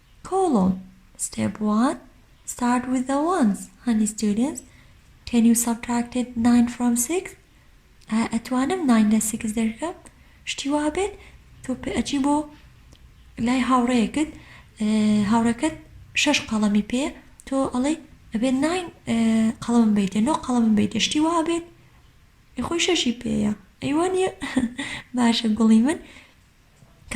column. Step 1, start with the ones. Honey students, can you subtract it 9 from 6? أتوانم 9 لە 6 دەرکەم شتی وا بێت تۆ ئەچی بۆ لای هاوڕەیەکت هاوڕەکەت 6 قەڵەمی پێ تۆ ئەڵێ ئەبێت 9 قەڵەمم بیتە 9 قەڵەمم بیتە شتی وا بێت خۆی 6 پێیە ئەیوانە باشە گوڵی من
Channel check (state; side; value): identical; both; correlation 1.00